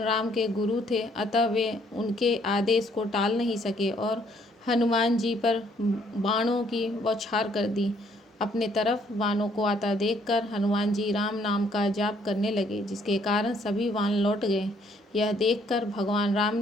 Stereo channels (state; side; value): normal; both; correlation 0.66